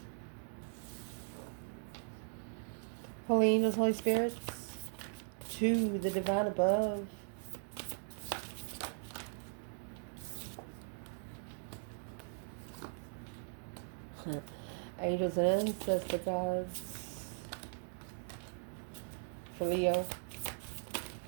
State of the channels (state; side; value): silent; left; digital silence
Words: Holy angels, Holy spirits, to the divine above. Angels and ancestor gods. For Leo.